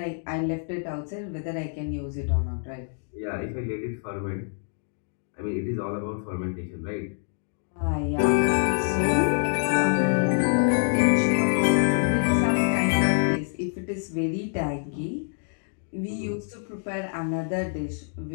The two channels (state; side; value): silent; right; 61 dB below the other